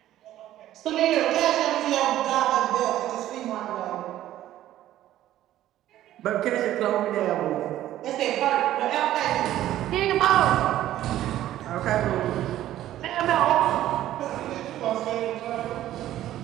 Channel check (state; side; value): quieter; left; 13.3 dB